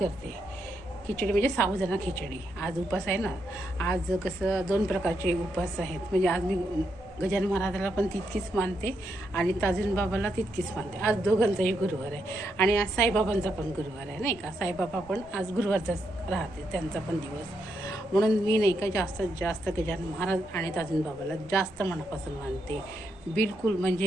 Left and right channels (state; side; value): normal; both; correlation 0.80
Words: खिचडी म्हणजे साबुदाणा खिचडी. आज उपास आहे ना. आज कसं 2 प्रकारचे उपास आहेत. म्हणजे आज मी गजानन महाराजाला पण तितकीच मानते आणि ताजुन बाबाला तितकीच मानते. आज दोघांचाही गुरुवार आहे आणि आज साईबाबांचा पण गुरुवार आहे, नाही का. साईबाबा पण आज गुरुवारचाच राहते, त्यांचा पण दिवस. म्हणून मी नाही का जास्तीत जास्त गजानन महाराज आणि ताजुन बाबाला जास्त मनापासून मानते. बिलकुल